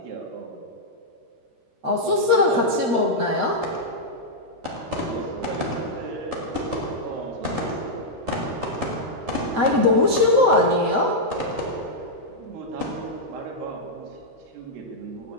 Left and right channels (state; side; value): late; left; 13 ms